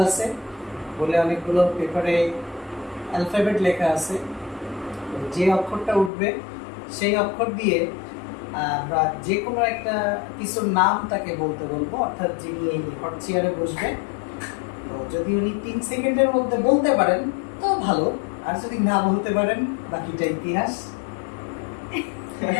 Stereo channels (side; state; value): right; drops out; at 6.1 s